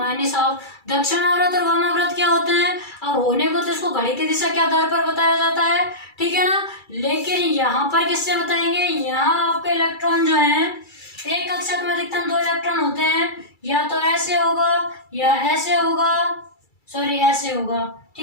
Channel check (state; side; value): late; right; 2.3 ms